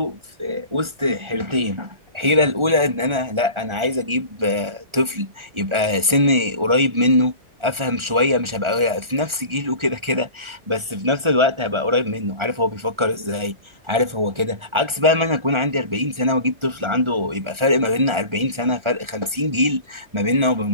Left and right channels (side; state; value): left; late; 1.4 ms